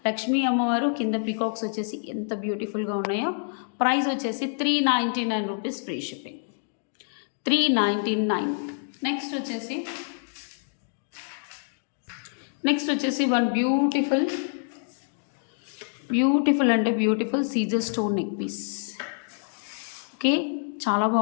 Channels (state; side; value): silent; right; digital silence